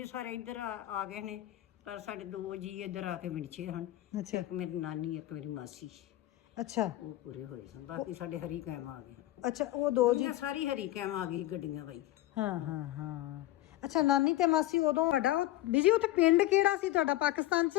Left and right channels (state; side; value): quieter; right; 15.4 dB